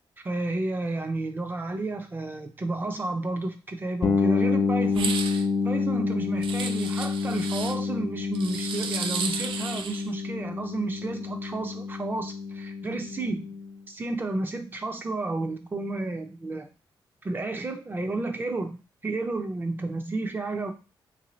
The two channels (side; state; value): both; normal; correlation 0.76